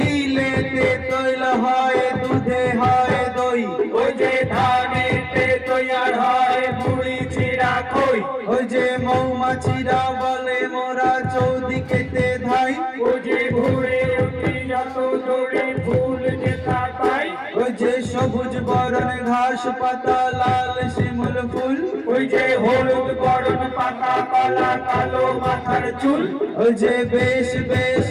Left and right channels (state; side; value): identical; both; correlation 1.00